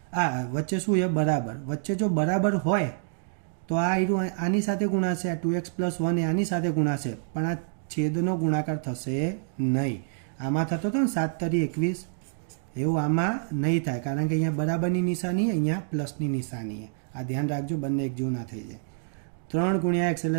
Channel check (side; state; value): left; silent; digital silence